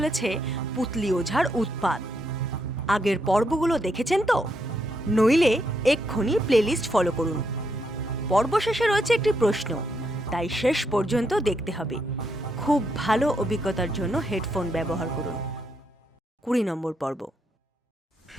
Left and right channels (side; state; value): both; normal; correlation 0.78